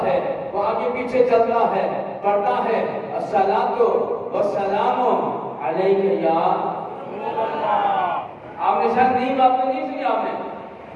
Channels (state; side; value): identical; both; correlation 1.00